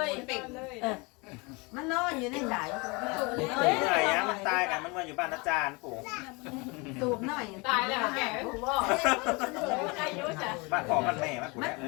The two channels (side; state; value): right; quieter; 28.0 dB